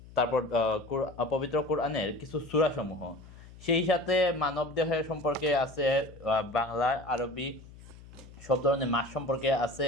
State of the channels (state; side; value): noise; left; hum, 19 dB below the sound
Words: তারপর পবিত্র কোরআনের কিছু সূরাসমূহ। সেই সাথে মানবদেহের সম্পর্কে আছে, বাংলা, আরবি সব ধরনের মাস সম্পর্কে আছে।